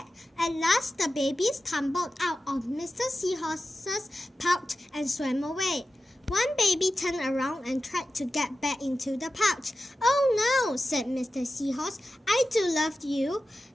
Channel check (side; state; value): both; normal; correlation 0.93